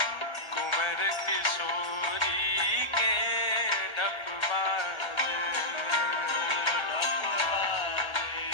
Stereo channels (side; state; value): right; late; 1.2 ms